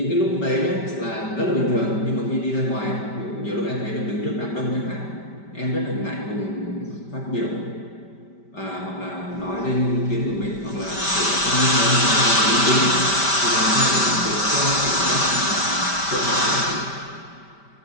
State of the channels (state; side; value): late; right; 5.1 ms